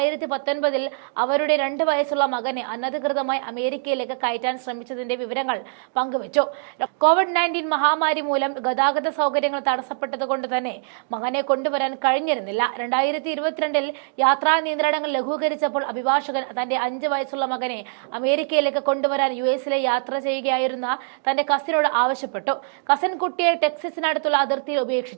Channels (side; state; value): left; silent; digital silence